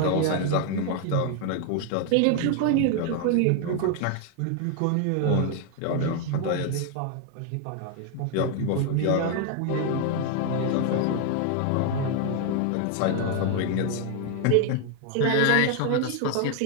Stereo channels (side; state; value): both; different; correlation 0.00